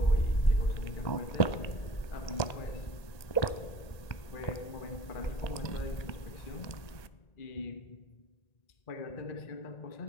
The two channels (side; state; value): right; late; 1.8 ms